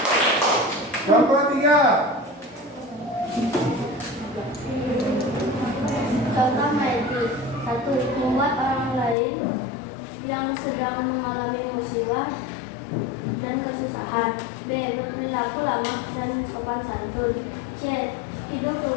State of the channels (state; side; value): drops out; right; at 9.2 s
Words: Kelompok 3. Contoh Maitri. 1. Membuat orang lain yang sedang mengalami musibah dan kesusahan. B. Berperilaku ramah dan sopan santun. C. Hidup